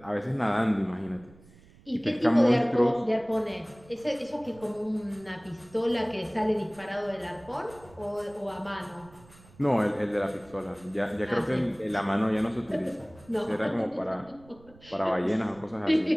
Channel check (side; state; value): right; noise; rumble, 25 dB below the sound